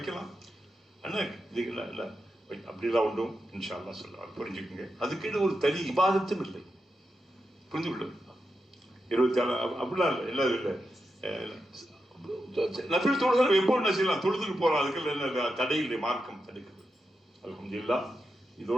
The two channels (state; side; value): normal; both; correlation 0.88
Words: அண்ணா, இதுங்களா இல்லை அப்படிலாம் உண்டும் இன்ஷா அல்லாஹ் சொல்லுவாங்க. புரிஞ்சுக்குங்க. அதுக்கேட்டு ஒரு தனி இபாதத்தும் இல்லை. புரிஞ்சு கொள்ள 24 அப்படிலாம் இல்லை. என்ன இல்லை நபில் தொழுதல் எப்போ என்ன செய்யலாம், தொழுதுக்கு போகலாம். அதுக்கு என்ன தடை இல்லை, மார்க்கம் தடுக்குது. அல்ஹம்துலில்லாஹ்.